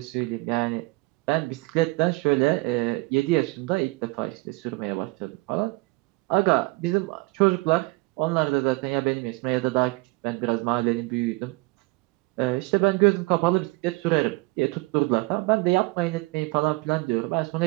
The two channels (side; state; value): left; quieter; 24.1 dB